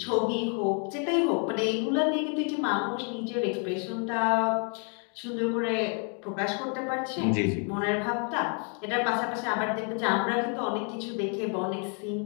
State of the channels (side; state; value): right; quieter; 39.7 dB